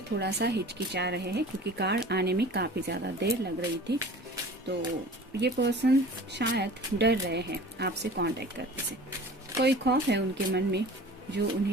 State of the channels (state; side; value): normal; both; correlation 0.42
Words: थोड़ा सा हिचकिचा रहे हैं क्योंकि कार्ड आने में काफी ज्यादा देर लग रही थी। तो ये पर्सन शायद डर रहे हैं आपसे कांटेक्ट करने से। कोई खौफ है उनके मन में जो